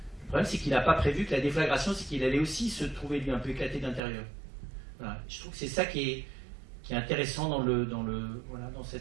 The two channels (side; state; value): left; drops out; at 4.0 s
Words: Le problème, c'est qu'il n'a pas prévu que la déflagration, c'est qu'il allait aussi se trouver, lui, un peu éclaté d'intérieur. Voilà. Je trouve que c'est ça qui est intéressant dans